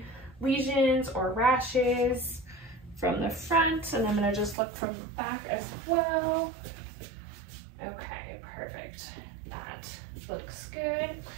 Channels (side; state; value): left; drops out; at 4.5 s